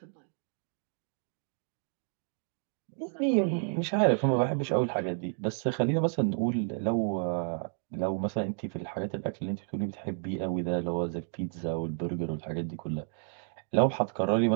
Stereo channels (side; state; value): left; silent; 57 dB below the other